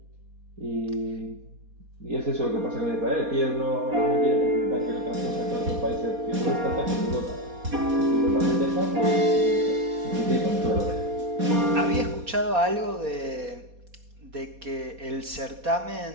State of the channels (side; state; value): left; late; 4.2 ms